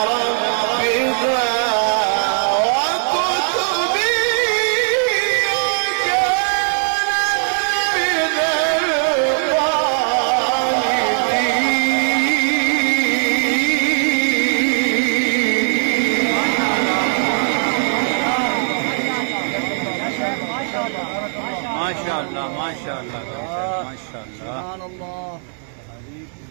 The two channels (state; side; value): silent; left; 67 dB below the other